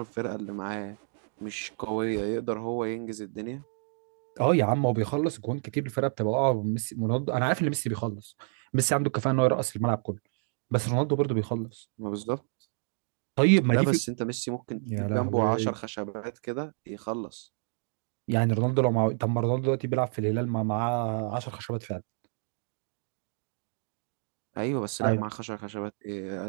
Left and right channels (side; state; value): left; silent; 58 dB below the other